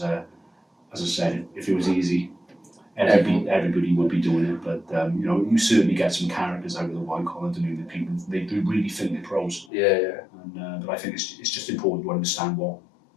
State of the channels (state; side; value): drops out; right; at 9.7 s